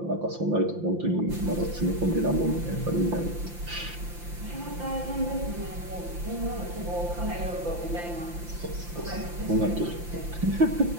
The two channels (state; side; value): late; left; 5.8 ms